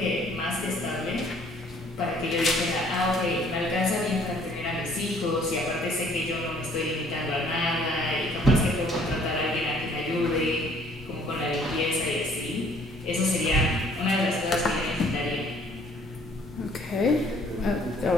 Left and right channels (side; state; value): both; normal; correlation 0.59